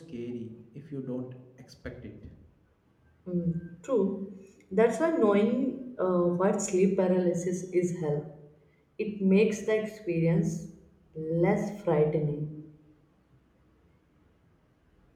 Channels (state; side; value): identical; both; correlation 1.00